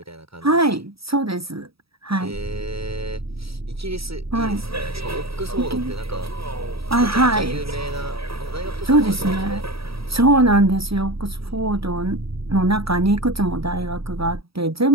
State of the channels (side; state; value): left; late; 0.77 ms